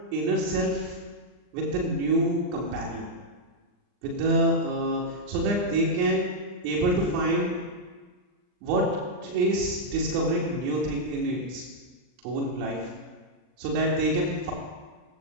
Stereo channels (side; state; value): left; late; 39 ms